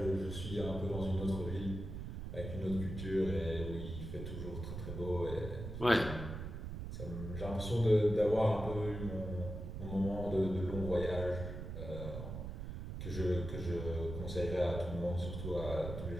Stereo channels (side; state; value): right; noise; rumble, 6 dB below the sound